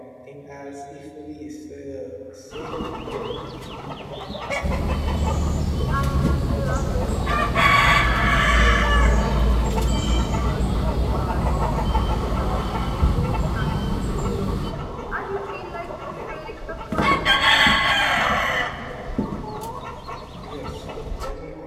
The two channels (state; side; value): identical; both; correlation 1.00